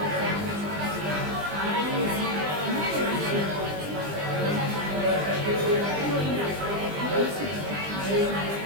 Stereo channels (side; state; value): left; late; 20 ms